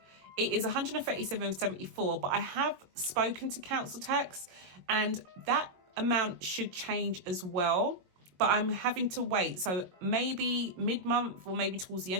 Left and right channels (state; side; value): late; left; 22 ms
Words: It is 137.74, but I have spoken to council tax and that amount should change as well, but I'm having to wait. So maybe mid-month or maybe towards the